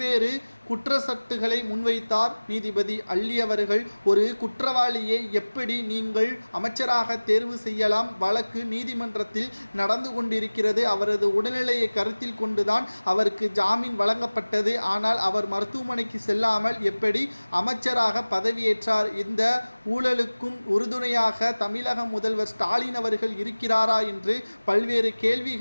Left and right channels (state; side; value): inverted; both; correlation -1.00